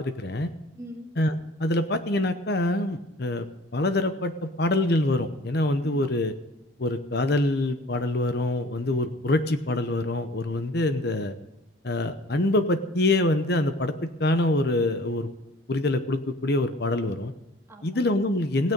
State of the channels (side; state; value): both; normal; correlation 0.49